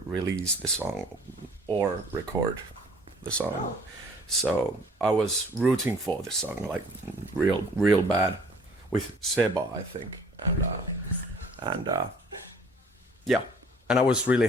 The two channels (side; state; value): both; normal; correlation 0.55